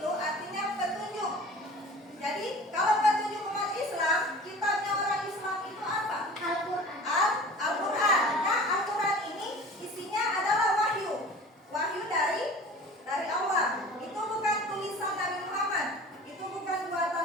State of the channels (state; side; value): normal; both; correlation 0.42